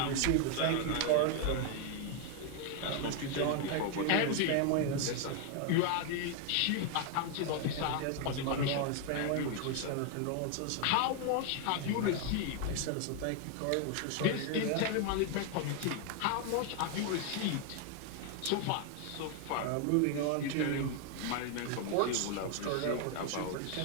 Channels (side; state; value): both; different; correlation 0.01